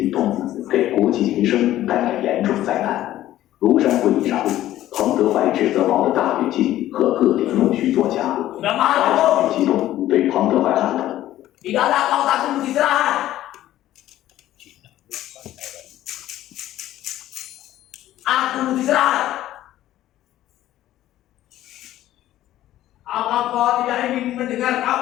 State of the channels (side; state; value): right; quieter; 13.8 dB